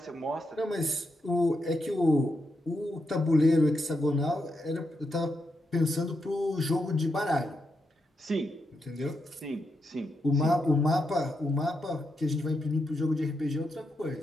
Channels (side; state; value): both; normal; correlation 0.83